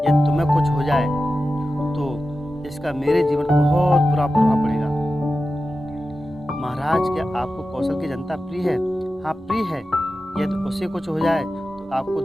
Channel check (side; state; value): both; normal; correlation 0.93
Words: यदि तुम्हें कुछ हो जाए तो इसका मेरे जीवन पर बहुत बुरा प्रभाव पड़ेगा। महाराज क्या आपको कौशल की जनता प्रिय है? हाँ प्रिय है। यदि उसे कुछ हो जाए तो आपको